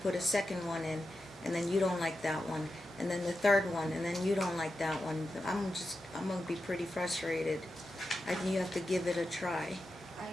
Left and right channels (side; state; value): both; normal; correlation 0.90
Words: a second one in, and then you don't like that one, and then the third one, and then you don't like that one? I'm gonna be pretty frustrated. I think you have to give it a try,